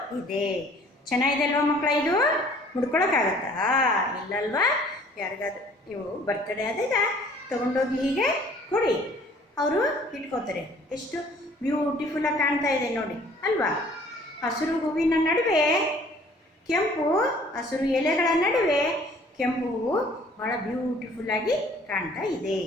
ಇದೆ. ಚೆನ್ನಾಗಿದೆ ಅಲ್ವಾ ಮಕ್ಕಳ? ಇದು ಮುಡ್ಕೊಳಕ್ಕಾಗತ್ತಾ? ಇಲ್ಲಲ್ವಾ? ಯಾರಿಗಾದ್ರೂ ನೀವು ಬರ್ತಡೇ ಆದಾಗ ತೊಗೊಂಡೋಗಿ ಹೀಗೆ ಕೊಡಿ, ಅವರು ಇಟ್ಕೋತಾರೆ. ಎಷ್ಟು ಬ್ಯೂಟಿಫುಲ್ಲಾಗಿ ಕಾಣ್ತಾ ಇದೆ ನೋಡಿ, ಅಲ್ವಾ? ಹಸಿರು ಹೂವಿನ ನಡುವೆ ಕೆಂಪು, ಹಸಿರು ಎಲೆಗಳ ನಡುವೆ ಕೆಂಪು ಹೂವು ಭಾಳ ಬ್ಯೂಟಿಫುಲ್ಲಾಗಿ ಕಾಣ್ತಾ ಇದೆ.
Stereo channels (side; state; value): both; normal; correlation 0.55